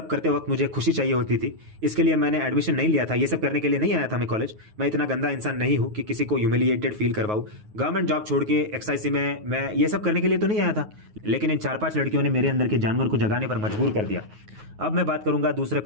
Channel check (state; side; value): late; left; 9.4 ms